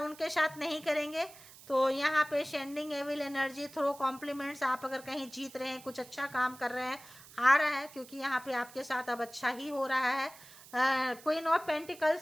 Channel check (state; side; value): noise; right; hiss, 20 dB below the sound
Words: साथ नहीं करेंगे। तो यहाँ पे sending evil energy throw compliments, आप अगर कहीं जीत रहे हैं, कुछ अच्छा काम कर रहे हैं, आ रहा है, क्योंकि यहाँ पे आपके साथ अब अच्छा ही हो रहा है। क्वीन ऑफ